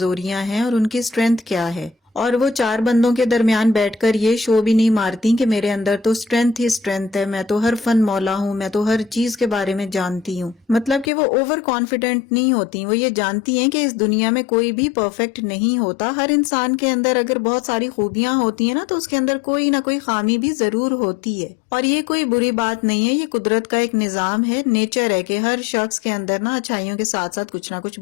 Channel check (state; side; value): drops out; right; at 11.1 s